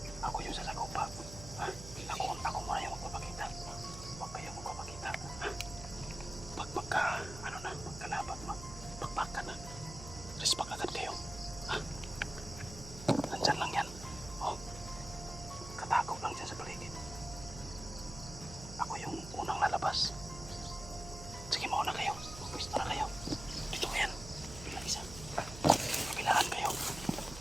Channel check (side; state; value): right; noise; hum, 11 dB below the sound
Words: Ako yung sasagupa. Ha? Ako muna yung magpapakita. Huwag kayong magpapakita. Ha? Pagka, ano na, pagkalaban, pagpakan na. Respect agad kayo. Ha? Nandyan lang yan. Oh. Katago lang dyan sa paligid. Ako yung unang lalabas. Sige, mauna kayo. Pwesto na kayo. Dito kayan. Bilang isa. Kabilaan kayo.